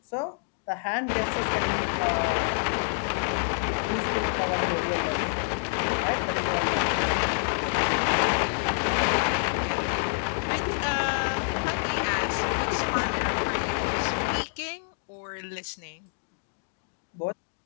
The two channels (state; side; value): silent; right; digital silence